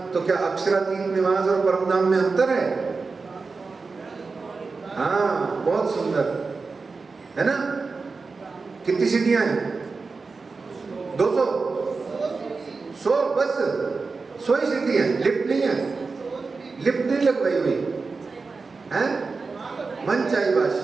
तो क्या अक्षरातीत निवास और परम धाम में अंतर है? हाँ, बहुत सुंदर है ना। कितनी सीढ़ियां हैं? 200 100 बस 100 ही सीढ़ी है, लिफ्ट नहीं है। लिफ्ट नहीं लगवाई हुई है, मन चाहिए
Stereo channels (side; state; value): left; quieter; 4.3 dB